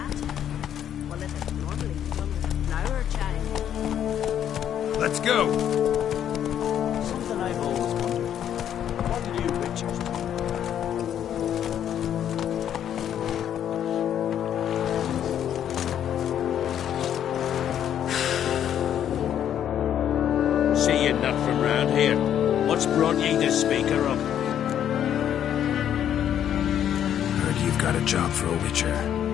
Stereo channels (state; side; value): quieter; right; 10.0 dB